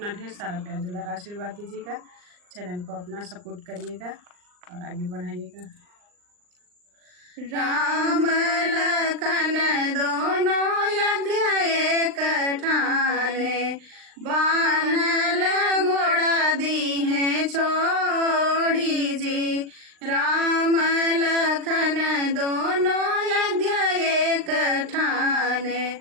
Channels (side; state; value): left; late; 39 ms